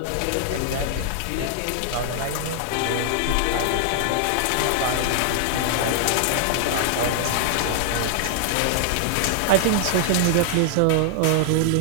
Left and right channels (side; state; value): both; different; correlation 0.00